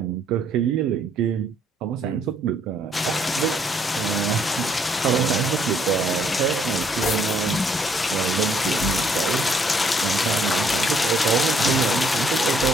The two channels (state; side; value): normal; both; correlation 0.67